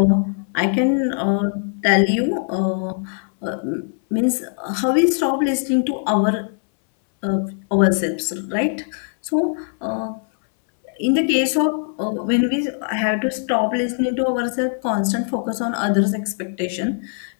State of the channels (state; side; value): silent; right; 64 dB below the other